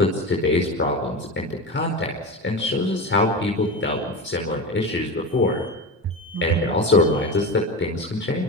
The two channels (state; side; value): normal; both; correlation 0.24